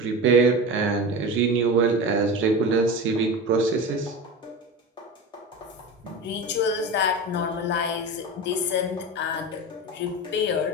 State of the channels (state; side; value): normal; both; correlation 0.27